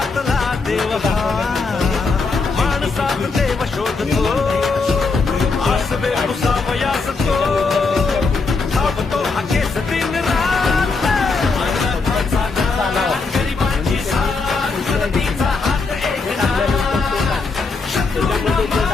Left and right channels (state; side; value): quieter; right; 4.2 dB